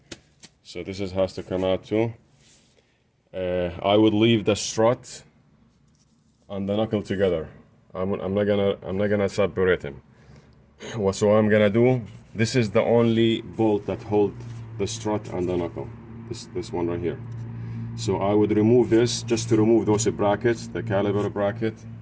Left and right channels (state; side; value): identical; both; correlation 1.00